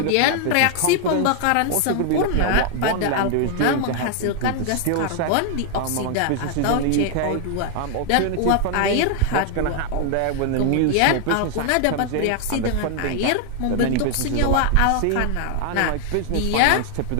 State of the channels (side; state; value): both; different; correlation 0.00